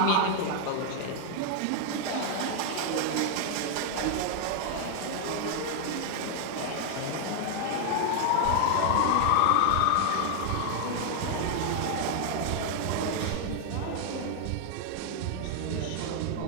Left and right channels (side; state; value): both; different; correlation 0.00